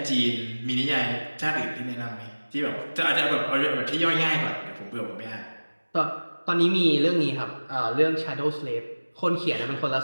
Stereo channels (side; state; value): both; inverted; correlation -1.00